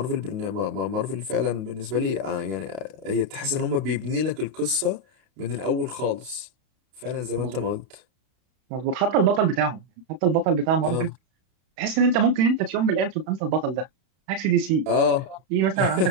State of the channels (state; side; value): late; left; 32 ms